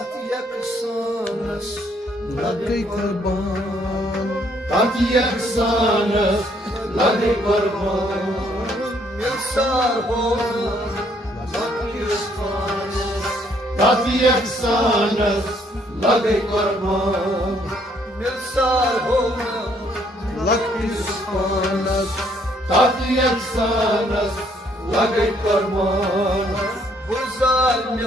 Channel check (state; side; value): normal; both; correlation 0.67